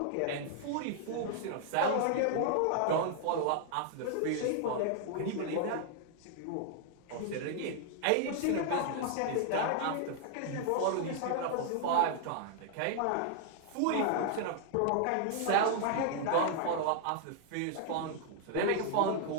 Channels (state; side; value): different; both; correlation 0.00